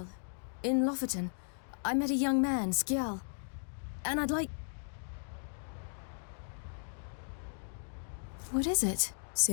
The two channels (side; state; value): right; silent; digital silence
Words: In Lofoten. I met a young man, Skjal. And I'd like... What is it?